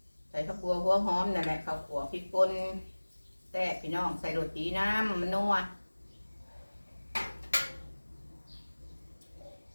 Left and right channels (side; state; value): both; inverted; correlation -1.00